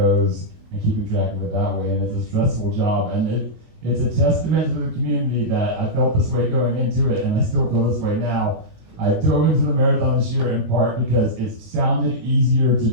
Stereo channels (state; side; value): late; left; 19 ms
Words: and keeping track of it that way, and it's a stressful job. And it's a testament to the community that I felt this way going into it, and I still feel this way now. I dove into the marathon this year in part because it sounded easier to